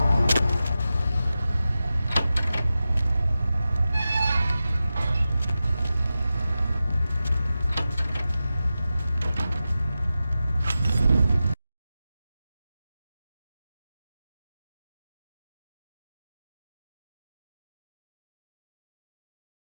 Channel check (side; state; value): both; inverted; correlation -0.93